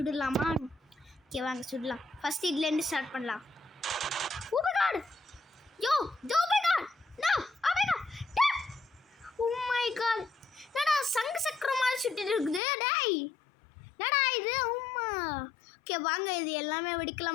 ஓகே வாங்க சுடலாம். ஃபர்ஸ்ட் இதுலேருந்து ஸ்டார்ட் பண்ணலாம். Oh my god, yo oh my god, no oh my god, oh my god, என்னடா சங்கு சக்கரம் மாதிரி சுட்டிட்டு இருக்குது. டேய் என்னடா இது, உம்மா. ஓகே வாங்க இது எல்லாமே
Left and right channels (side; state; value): right; drops out; at 12.6 s